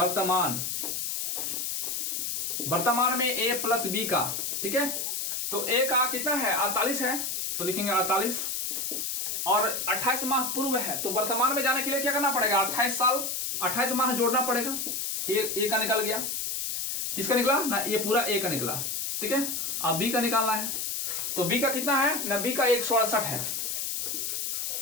वर्तमान में a प्लस b का। ठीक है, तो a का कितना है 48 है, तो लिखेंगे 48, और 28 माह पूर्व है, तो वर्तमान में जाने के लिए क्या करना पड़ेगा, 28 साल 28 माह जोड़ना पड़ेगा। ए का निकल गया, किसका निकला ना, ये पूरा ए का निकला। ठीक है, अब बी का निकालना है, तो बी का कितना है ना, बी का 168 है।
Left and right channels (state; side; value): noise; left; hiss, 2 dB below the sound